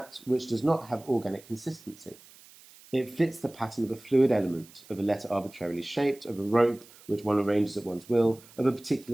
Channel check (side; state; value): right; noise; hiss, 23 dB below the sound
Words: which does not have organic consistency. It fits the pattern of a fluid element, of a letter arbitrarily shaped, of a rope which one arranges at one's will, of a